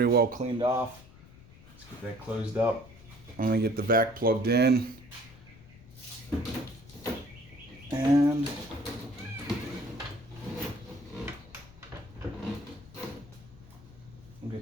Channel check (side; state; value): left; noise; rumble, 21 dB below the sound